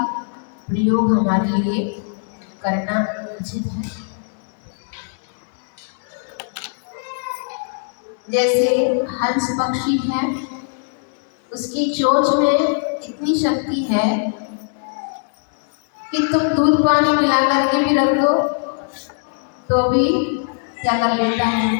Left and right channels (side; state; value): right; silent; 65 dB below the other